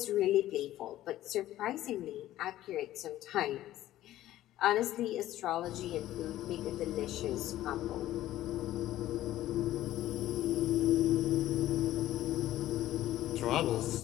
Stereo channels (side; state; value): right; quieter; 14.1 dB